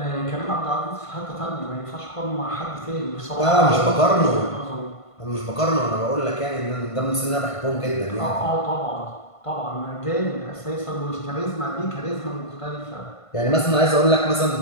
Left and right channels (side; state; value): right; late; 1.5 ms